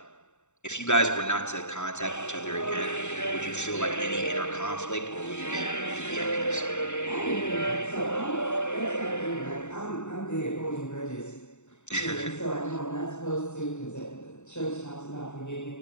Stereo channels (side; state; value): right; late; 0.83 ms